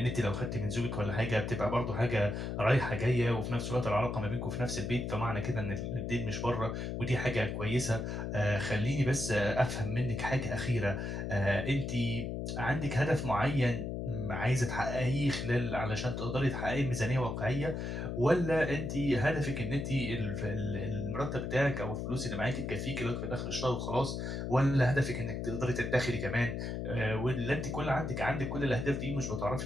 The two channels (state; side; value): noise; left; hum, 3 dB below the sound